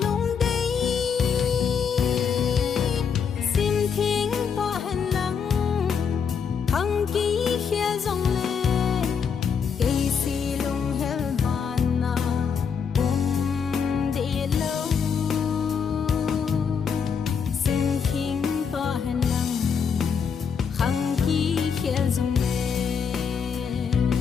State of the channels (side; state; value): right; quieter; 6.6 dB